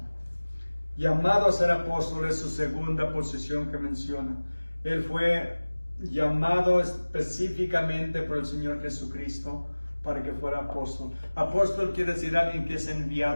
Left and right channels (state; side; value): inverted; both; correlation -1.00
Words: llamado a ser apóstol. Es su segunda posición que menciona. Él fue llamado específicamente por el Señor Jesucristo para que fuera apóstol. Apóstol quiere decir alguien que es